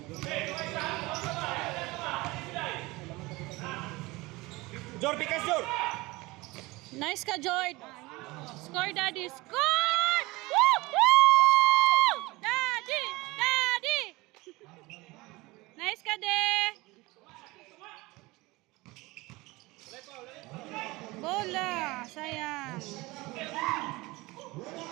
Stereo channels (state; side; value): quieter; left; 22.0 dB